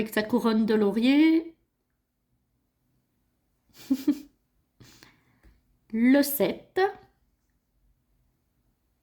sa couronne de laurier. Le 7.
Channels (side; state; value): both; identical; correlation 1.00